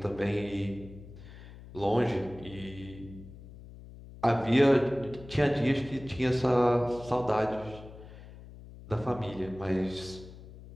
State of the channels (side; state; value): left; noise; hum, 17 dB below the sound